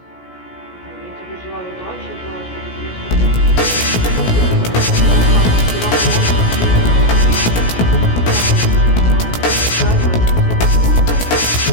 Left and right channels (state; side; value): late; right; 17 ms